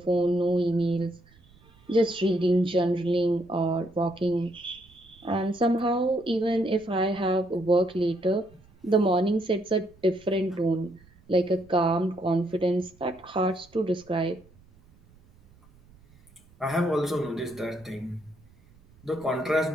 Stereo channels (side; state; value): right; noise; rumble, 28 dB below the sound